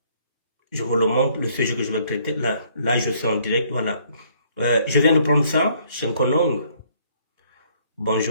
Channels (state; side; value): inverted; both; correlation -0.64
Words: Je vous le montre, le sujet que je vais traiter. Là, je suis en direct, voilà. Je viens de prendre ça, Shenkonong.